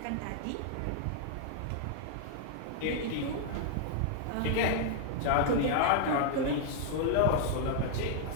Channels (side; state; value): both; different; correlation -0.01